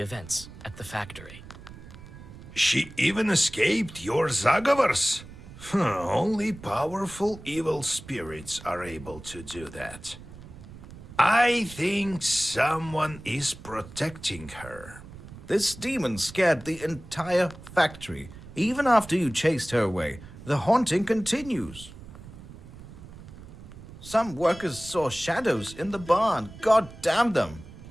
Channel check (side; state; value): right; noise; rumble, 16 dB below the sound